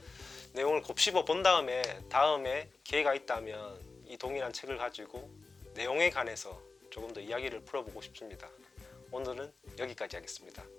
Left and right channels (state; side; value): quieter; right; 4.0 dB